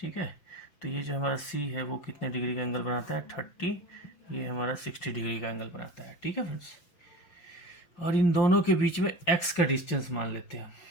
है। तो ये जो हमारा सी है वो कितने डिग्री का एंगल बनाता है, 30, ये हमारा 60 डिग्री का एंगल बनाता है, ठीक है फ्रेंड्स। और इन दोनों के बीच में एक्स का डिस्टेंस मान लेते हैं,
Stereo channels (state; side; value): late; right; 6.0 ms